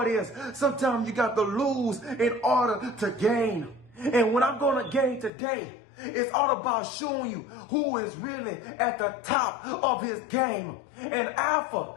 is sometimes you got to lose in order to gain. And what I'm going to gain today, it's all about showing you who is really at the top of his game. And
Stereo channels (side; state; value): right; drops out; at 5.3 s